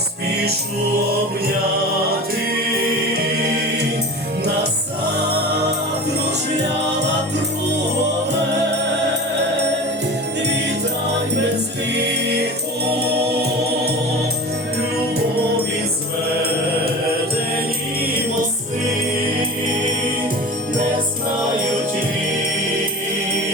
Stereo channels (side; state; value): both; normal; correlation 0.34